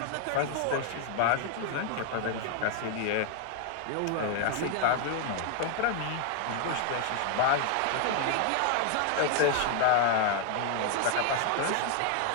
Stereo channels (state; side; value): different; both; correlation 0.00